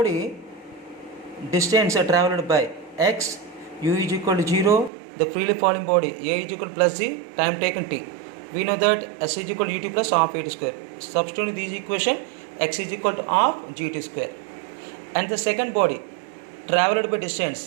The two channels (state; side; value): drops out; left; at 4.9 s